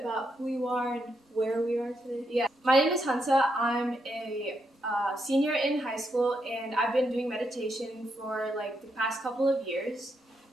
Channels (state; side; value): normal; both; correlation 0.80